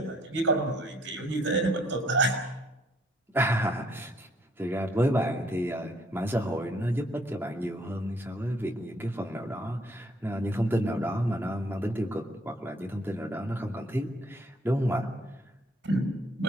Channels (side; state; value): both; normal; correlation 0.65